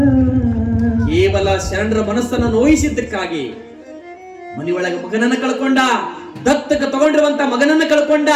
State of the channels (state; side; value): identical; both; correlation 1.00